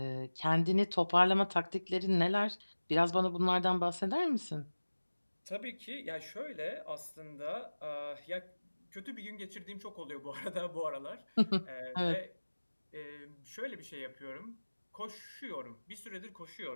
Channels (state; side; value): inverted; both; correlation -1.00